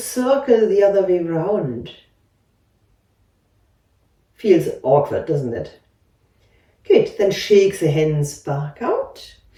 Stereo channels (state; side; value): identical; both; correlation 1.00